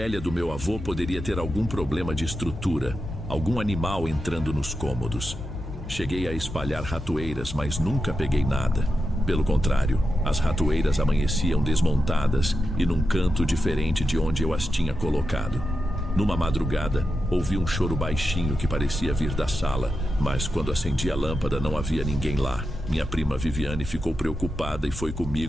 do meu avô poderia ter algum problema de estrutura, algum animal entrando nos cômodos. Cheguei a espalhar ratoeiras, mas nunca peguei nada. Pelo contrário, as ratoeiras amanheciam desmontadas e num canto diferente de onde eu as tinha colocado. Numa madrugada, ouvi um choro baixinho que parecia vir da sala, mas quando acendi a lâmpada não havia ninguém lá. Minha prima Viviane ficou preocupada e foi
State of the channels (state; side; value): noise; left; hum, 13 dB below the sound